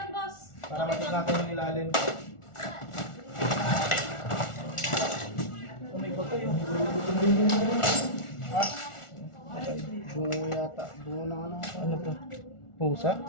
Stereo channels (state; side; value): late; right; 1.4 ms